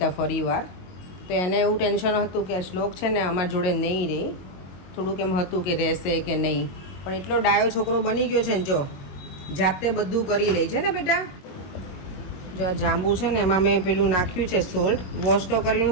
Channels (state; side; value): late; right; 22 ms